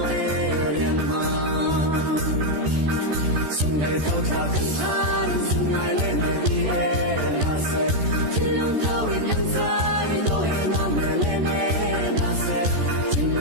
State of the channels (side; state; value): left; late; 14 ms